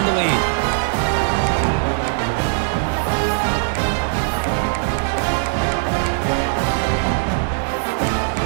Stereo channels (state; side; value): silent; left; 66 dB below the other